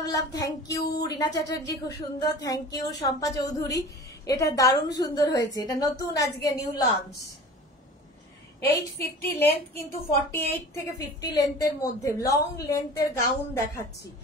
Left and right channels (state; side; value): normal; both; correlation 0.40